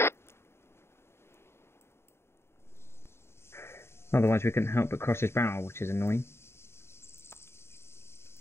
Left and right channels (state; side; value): late; right; 0.12 ms